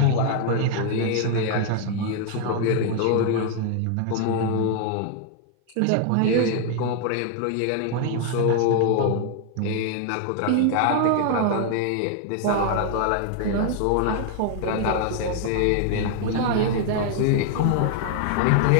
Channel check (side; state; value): both; different; correlation 0.00